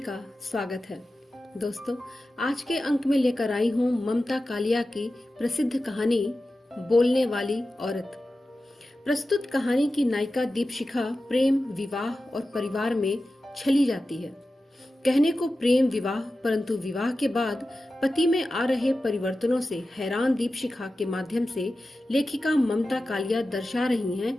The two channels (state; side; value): normal; both; correlation 0.94